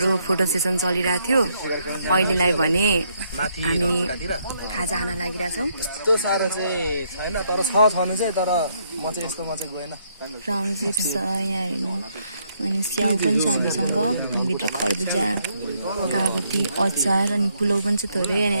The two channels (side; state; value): both; inverted; correlation -0.73